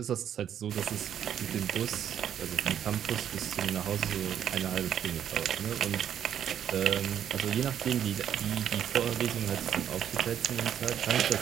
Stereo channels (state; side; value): quieter; left; 9.6 dB